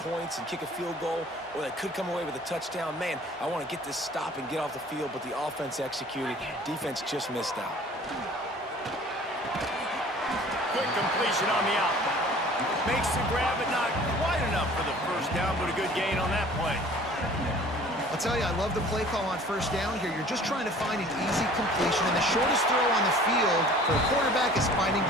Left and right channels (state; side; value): normal; both; correlation 0.49